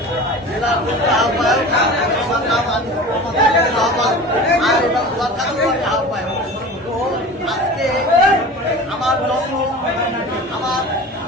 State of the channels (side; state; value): both; normal; correlation 0.36